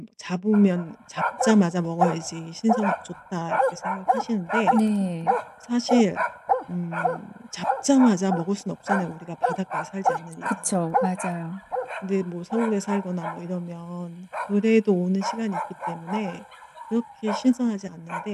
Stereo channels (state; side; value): identical; both; correlation 1.00